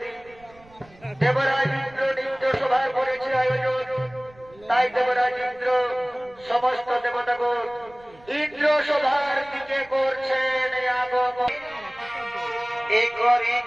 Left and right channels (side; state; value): right; noise; rumble, 26 dB below the sound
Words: দেবরাজ ইন্দ্র নিত্য সভায় করেছে আয়োজন। তাই দেবরাজ ইন্দ্র সমস্ত দেবতাগণ ইন্দ্র সভার দিকে করছেন আগমন। এ করে